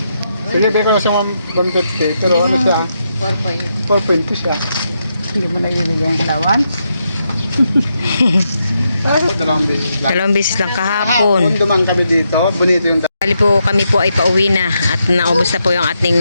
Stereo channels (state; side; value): inverted; both; correlation -0.82